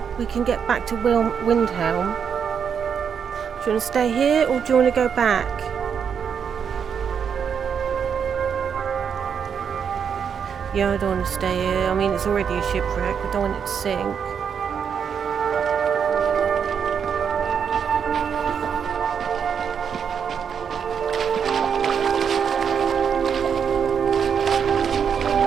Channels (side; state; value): left; quieter; 7.2 dB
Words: we can get back to Windhelm. Do you want to stay here or do you want to go back? Yeah, I don't want to stay here. I mean, it's already a shipwreck. I don't want it to sink.